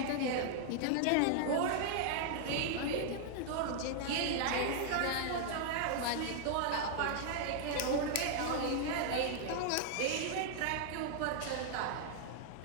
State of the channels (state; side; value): different; both; correlation -0.01